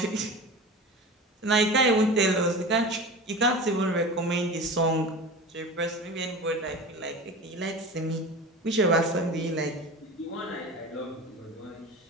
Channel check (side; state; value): both; normal; correlation 0.32